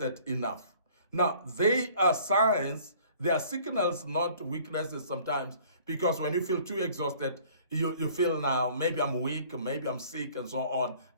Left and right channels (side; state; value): both; inverted; correlation -0.53